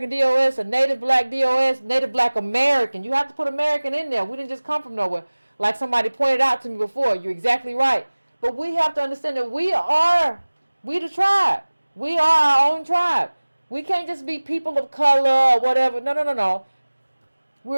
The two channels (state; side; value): inverted; both; correlation -1.00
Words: DOS, a Native Black DOS, Native Black American. You have to put American in there. We didn't just come from nowhere. Like somebody pointed out to me before. You're exactly right. But we have to understand that we the tribe. We are our own tribe. We can't just be people of color or whatever. No.